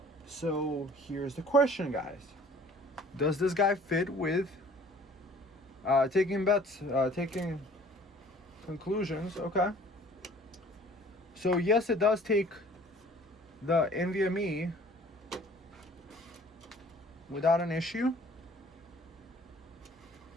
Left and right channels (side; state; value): both; normal; correlation 0.52